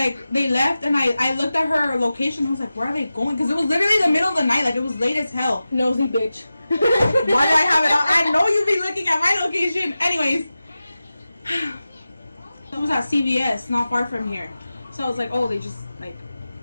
left, and I looked at her location, I was like, where are they going? Because it was literally the middle of the night, like, it was late as hell. Nosy bitch. Why do I have it on? I know you be looking at my location. Anyways, it was at CVS, not far from here. So I was like, oh, they just, like,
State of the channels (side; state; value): both; inverted; correlation -0.94